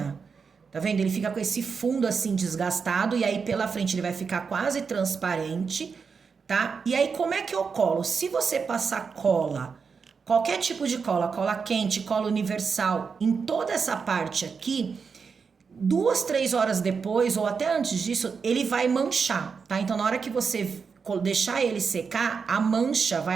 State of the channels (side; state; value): left; quieter; 5.6 dB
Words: Tá vendo? Ele fica com esse fundo assim desgastado e aí pela frente ele vai ficar quase transparente, tá? E aí como é que eu colo? Se você passar cola, qualquer tipo de cola, cola quente, cola universal, em toda essa parte aqui, 2, 3 horas depois ou até antes disso, ele vai manchar, tá? Então na hora que você deixar ele secar, a mancha